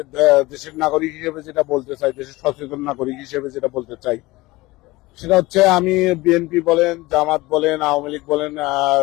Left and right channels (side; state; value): right; quieter; 20.6 dB